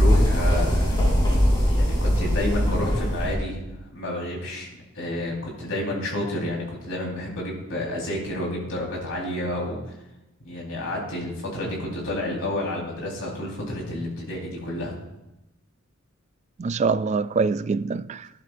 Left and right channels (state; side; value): normal; both; correlation 0.70